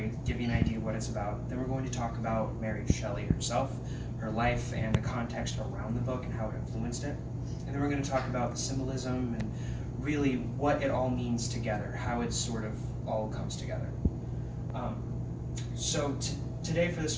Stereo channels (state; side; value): identical; both; correlation 1.00